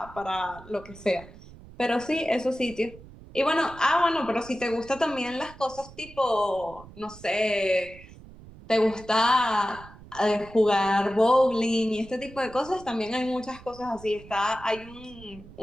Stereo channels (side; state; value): right; noise; rumble, 19 dB below the sound